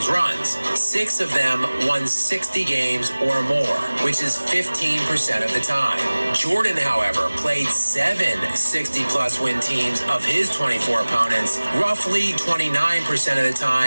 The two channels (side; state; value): both; inverted; correlation -1.00